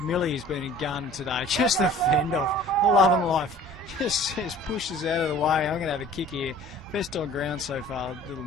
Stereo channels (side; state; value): both; normal; correlation 0.47